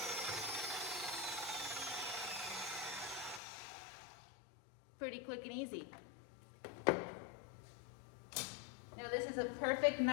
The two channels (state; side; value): drops out; right; at 3.4 s